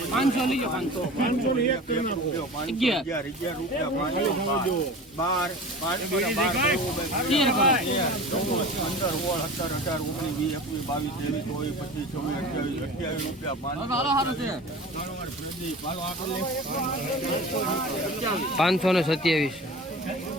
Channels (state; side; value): normal; both; correlation 0.36